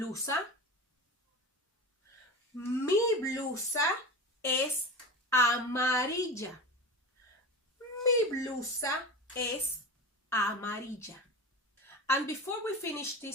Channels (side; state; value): both; normal; correlation 0.28